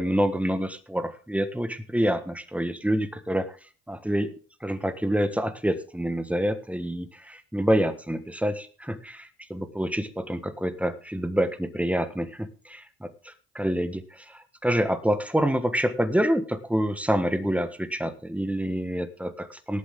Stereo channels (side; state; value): both; normal; correlation 0.92